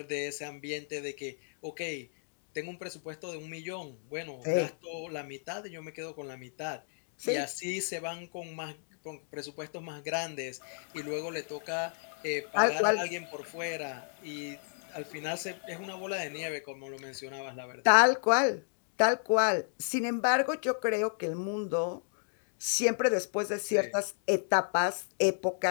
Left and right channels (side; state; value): right; silent; digital silence